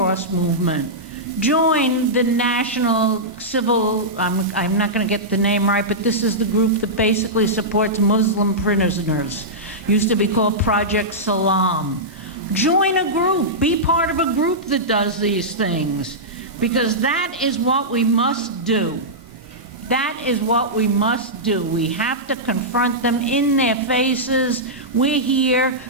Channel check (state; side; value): normal; both; correlation -0.12